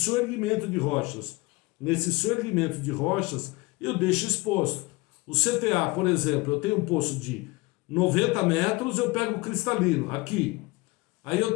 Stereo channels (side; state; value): right; quieter; 23.3 dB